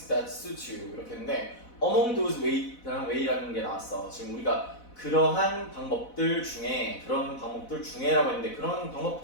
that suit you. 이렇게 했는데 among those way라는 게 나왔어. 지금 우리가 그런 방법들 중에라고 했는데, 그런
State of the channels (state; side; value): late; right; 4.0 ms